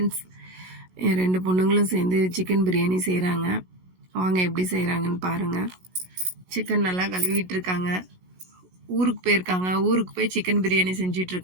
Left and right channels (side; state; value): left; late; 16 ms